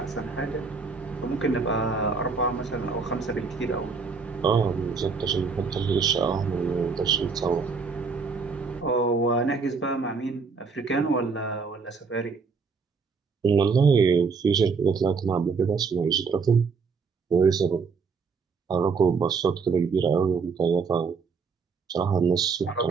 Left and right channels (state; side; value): quieter; left; 5.0 dB